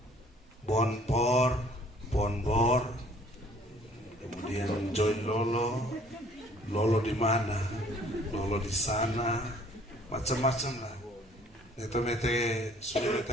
Bonpor, Bonbor, kemudian Joy Lolo di mana, Lolo di sana, macam-macam lah. Itu mete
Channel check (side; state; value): both; normal; correlation 0.57